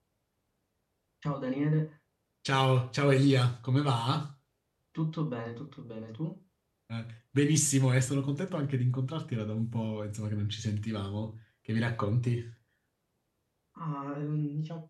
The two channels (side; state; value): both; identical; correlation 1.00